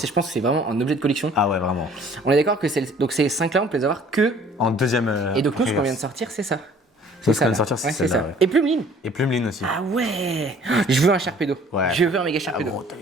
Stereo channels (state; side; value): normal; both; correlation 0.54